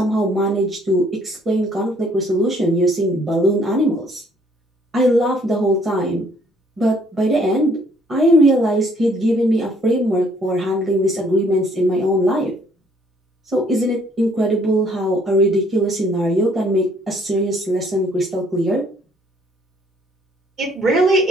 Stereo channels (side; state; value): both; normal; correlation 0.63